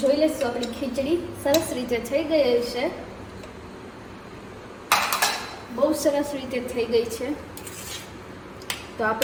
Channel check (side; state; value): both; identical; correlation 1.00